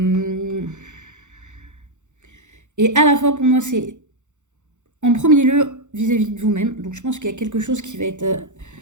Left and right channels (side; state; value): left; late; 0.84 ms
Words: et à la fois, pour moi, c'est en premier lieu vis-à-vis de vous-même. Donc je pense qu'il y a quelque chose qui va être